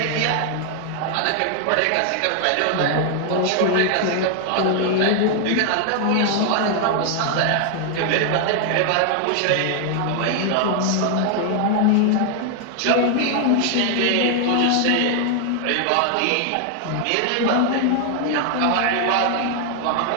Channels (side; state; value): both; different; correlation 0.00